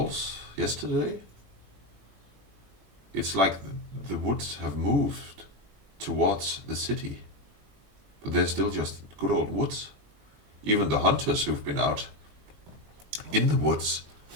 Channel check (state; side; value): late; left; 21 ms